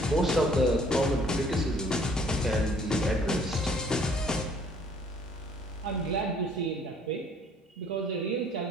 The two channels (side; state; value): both; normal; correlation 0.59